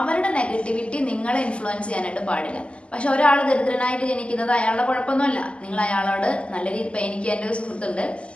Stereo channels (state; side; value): late; right; 0.055 ms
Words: നെഗറ്റിവിറ്റി നിങ്ങളെ ഇൻഫ്ലുവൻസ് ചെയ്യാനായിട്ട് പാടില്ല. പക്ഷെ ഒരാൾ ദരിദ്രനായിട്ട് ജനിക്കുന്നത് അയാളുടെ കുഴപ്പമൊന്നുമല്ല. നിങ്ങൾ അയാളോട് നല്ല രീതി, ഇപ്പം എനിക്ക് എൻ്റെ ഒരു സുഹൃത്തുണ്ട്,